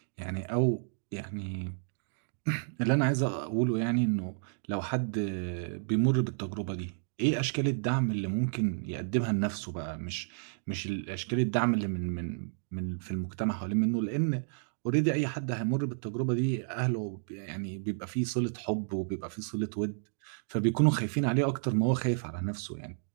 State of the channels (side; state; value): left; silent; digital silence